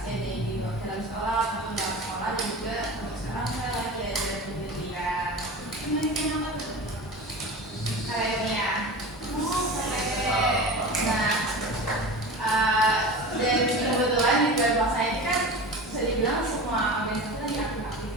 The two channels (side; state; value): both; normal; correlation 0.32